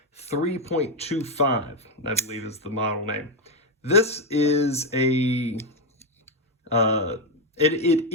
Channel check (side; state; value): both; normal; correlation 0.05